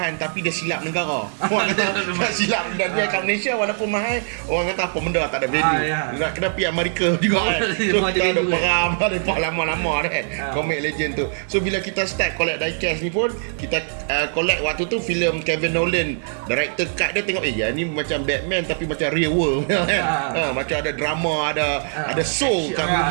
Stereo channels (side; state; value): left; silent; 58 dB below the other